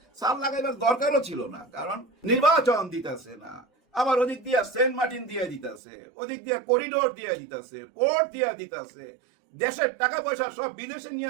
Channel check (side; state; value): left; drops out; at 5.8 s